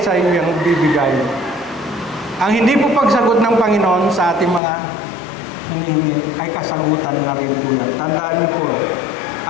sa iyo yung bibigay. Ang hindi po pagsagot ng Panginoon sa ating mga hinihingi ay kasagutan na rin po yan. Tandaan niyo po,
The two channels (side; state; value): right; drops out; at 4.6 s